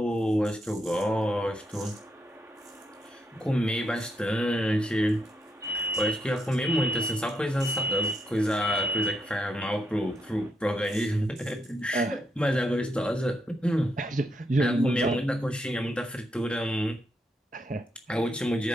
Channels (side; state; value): both; normal; correlation 0.80